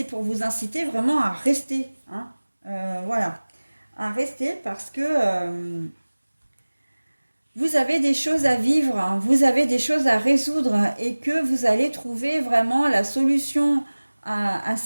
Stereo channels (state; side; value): inverted; both; correlation -1.00